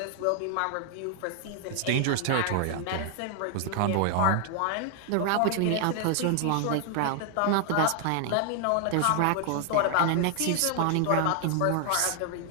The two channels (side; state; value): both; different; correlation 0.00